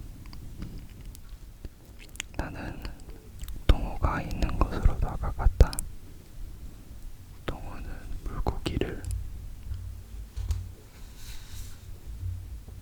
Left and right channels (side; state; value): both; identical; correlation 1.00